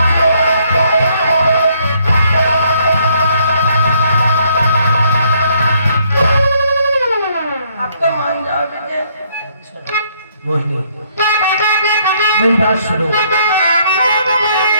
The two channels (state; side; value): inverted; both; correlation -0.68